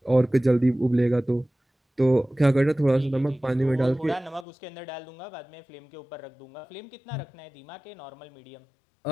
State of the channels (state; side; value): drops out; right; at 4.5 s